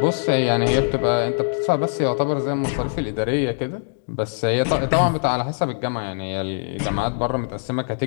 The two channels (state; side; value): silent; right; digital silence